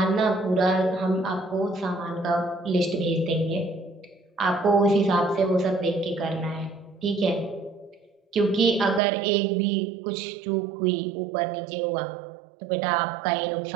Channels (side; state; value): left; drops out; at 9.0 s